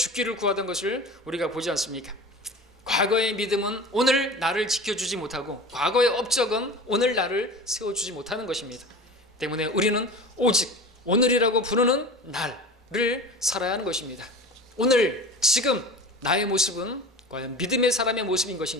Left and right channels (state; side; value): normal; both; correlation 0.35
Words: 구하던 것을 우리가 보지 않습니까? 과거의 믿음은 오늘 나를 지켜주지 못하고 과거의 업적은 오늘 나를 세워주지 못하는 것입니다. 때문에 우리는 오직 오늘이라고 부르는 날을 살아야 하는 것입니다. 오늘 지금 나의 모습은 과연 믿음의 사람의 모습인